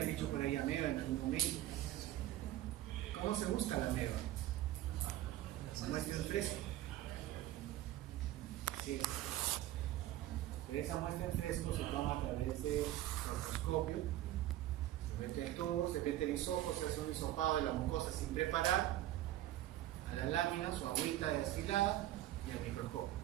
dicho por ahí ameba en algún momento. ¿Cómo se busca la ameba? Muestra en fresco. Sí. Pero esa muestra en fresco se toma a través de proctoscopio. Se mete el tubo, se mete el hisopo, se hace un hisopado de la mucosa sin preparar, a las láminas o agüita destilada y al microscopio.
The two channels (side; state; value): left; quieter; 14.2 dB